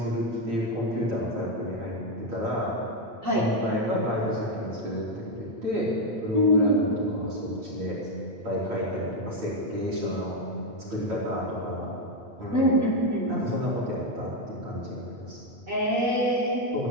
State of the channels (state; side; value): late; left; 8.8 ms